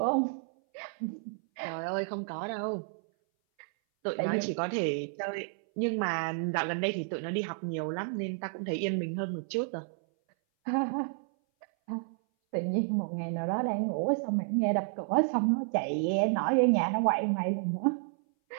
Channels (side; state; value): left; silent; 57 dB below the other